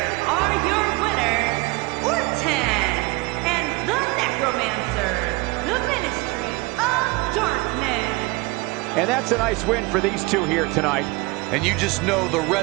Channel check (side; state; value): left; quieter; 23.9 dB